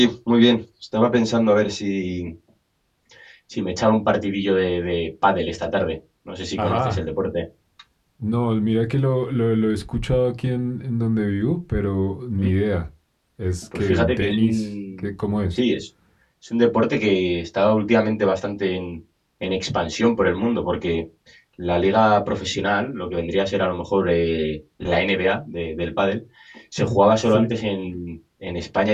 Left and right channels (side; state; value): both; identical; correlation 1.00